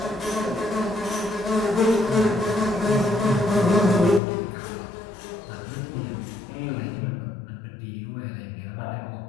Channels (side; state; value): right; drops out; at 4.2 s